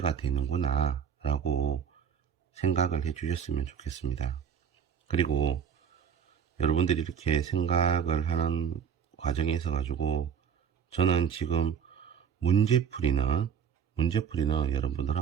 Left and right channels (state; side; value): quieter; left; 7.5 dB